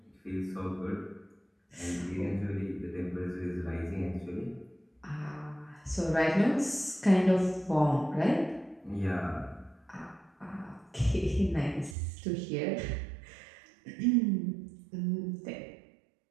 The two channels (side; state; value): left; drops out; at 12.0 s